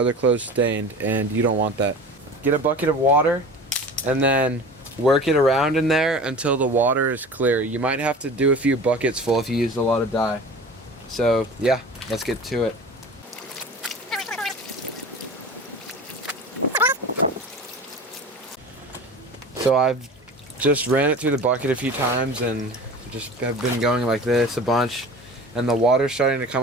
clothes stained, and you don't want that. Get a bucket of water and then work it around in there until the water is clear. You might have to do a few buckets full if you used a lot of dye. So yeah, let's get to it. So I've just ran it through the bucket a few times and just have been going like this a bunch, and the water's starting to come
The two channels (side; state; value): both; normal; correlation 0.37